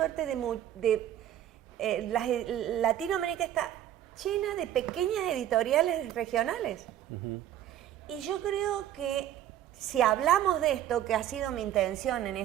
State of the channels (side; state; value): left; quieter; 11.6 dB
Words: Latinoamérica está llena de pequeñas editoriales regionales. Y yo creo que si hablamos de esto, que ha sido mi intención en